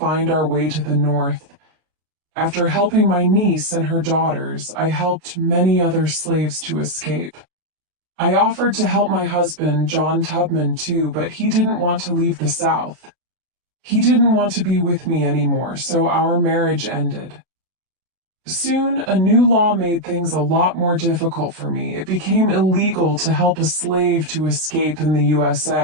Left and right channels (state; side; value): late; left; 32 ms